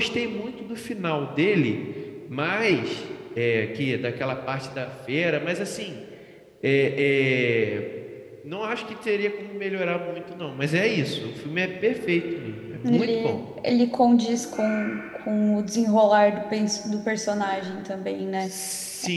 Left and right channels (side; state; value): both; identical; correlation 1.00